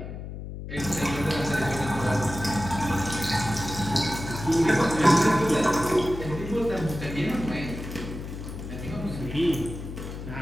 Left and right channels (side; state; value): left; noise; hum, 9 dB below the sound